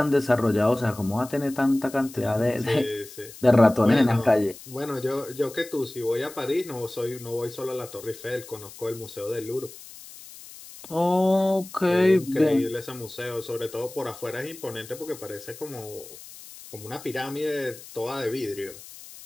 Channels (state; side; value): noise; left; hiss, 17 dB below the sound